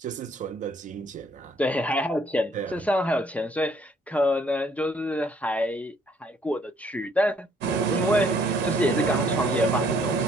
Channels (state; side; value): normal; both; correlation 0.64